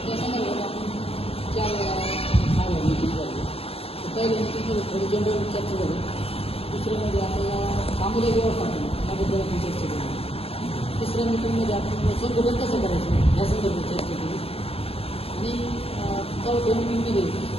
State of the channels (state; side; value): late; right; 0.28 ms